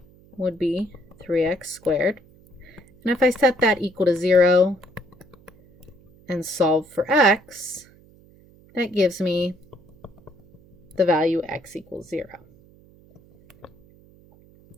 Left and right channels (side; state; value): right; noise; hum, 27 dB below the sound